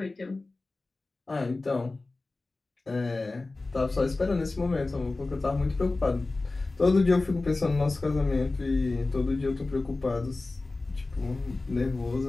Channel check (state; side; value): quieter; right; 3.3 dB